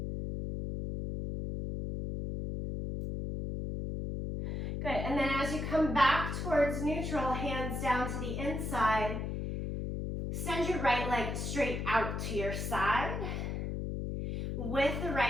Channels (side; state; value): left; noise; hum, 3 dB below the sound